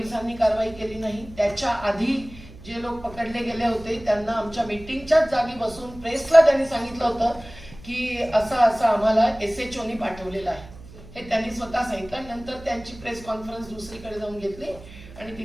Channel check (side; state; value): right; noise; hum, 18 dB below the sound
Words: कारवाई केली नाही. त्याच्या आधी जे लोक पकडले गेले होते त्यांना आमच्या मीटिंगच्याच जागी बसून प्रेसला त्यांनी सांगितलं होतं की असं आम्हाला SHOनी पाठवलेलं आहे, हे त्यांनी स्वतः सांगितलं. नंतर त्यांची प्रेस कॉन्फरन्स दुसरीकडे जाऊन घेतली आणि